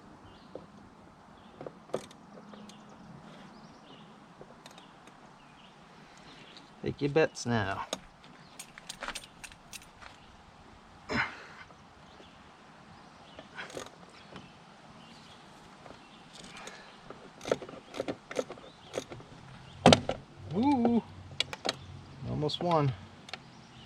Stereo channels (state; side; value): identical; both; correlation 1.00